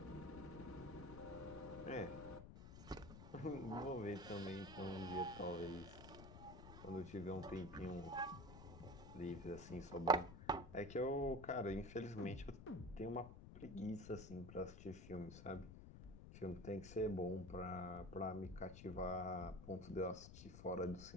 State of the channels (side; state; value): left; noise; rumble, 12 dB below the sound